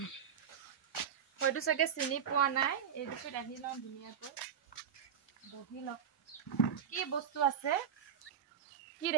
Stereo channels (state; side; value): quieter; left; 8.1 dB